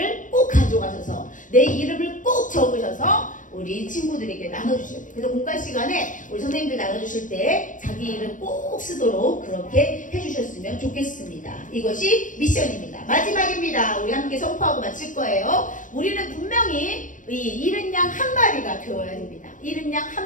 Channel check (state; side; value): late; right; 0.38 ms